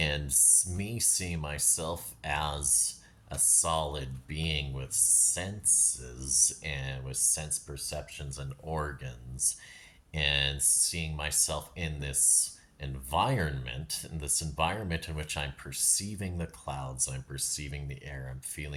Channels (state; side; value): identical; both; correlation 1.00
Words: me seeing myself as a solid being with senses and with sense perceptions and organs, and seeing myself in this environment in which I'm perceiving the clouds, I'm perceiving the air, I'm